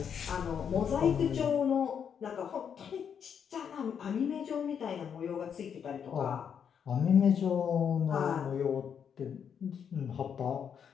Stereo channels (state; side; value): quieter; right; 7.6 dB